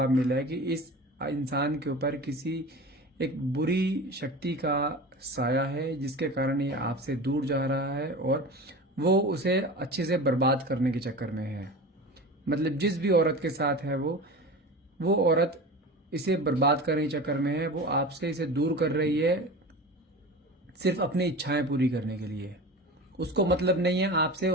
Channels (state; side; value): normal; both; correlation 0.32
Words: मिला है कि इस इंसान के ऊपर किसी एक बुरी शक्ति का साया है, जिसके कारण ये आपसे दूर जा रहा है और वो उसे अच्छे से बर्बाद करने के चक्कर में है। मतलब जिस भी औरत के साथ है वो औरत इसे बर्बाद करने के चक्कर में है, वो आपसे इसे दूर कर रही है सिर्फ अपनी इच्छाएं पूरी करने के लिए। उसको मतलब नहीं है आपसे,